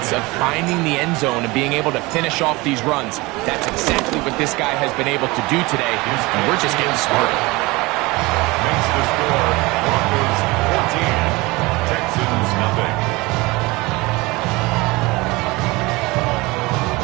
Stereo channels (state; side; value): quieter; left; 22.8 dB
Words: of finding the end zone and being able to finish off these runs. That's exactly what this guy has been able to do today, and we're just getting started. Makes the score Broncos 14, Texans nothing.